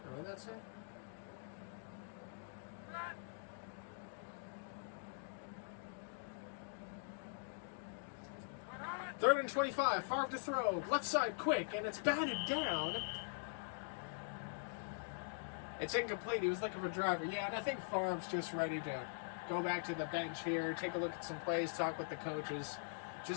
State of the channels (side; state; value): right; silent; digital silence